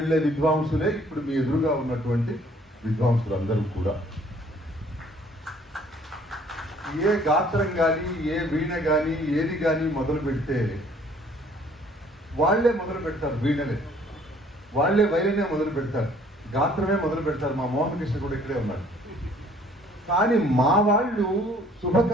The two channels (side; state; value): both; normal; correlation 0.58